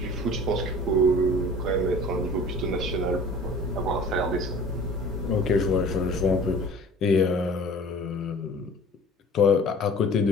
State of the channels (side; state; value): both; normal; correlation 0.45